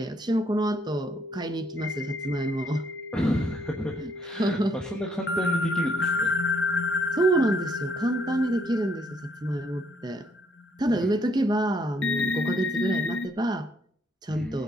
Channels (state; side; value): normal; both; correlation 0.69